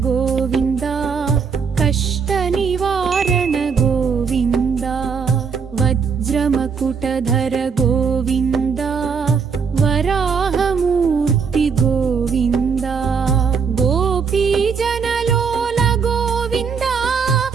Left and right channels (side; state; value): left; quieter; 5.9 dB